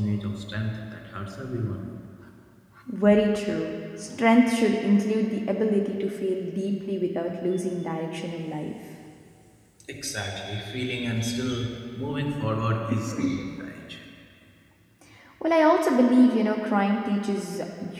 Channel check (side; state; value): both; identical; correlation 1.00